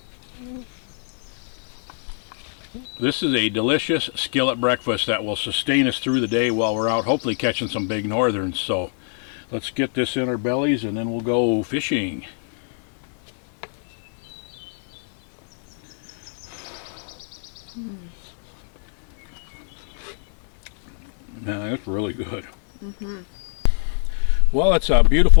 This is a delicious skillet breakfast that will sustain us through the day while we're out hopefully catching some big northerns. So let's get this in our bellies and then we'll go fishing. Man, that's really good. Well, it's a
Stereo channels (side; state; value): right; silent; 64 dB below the other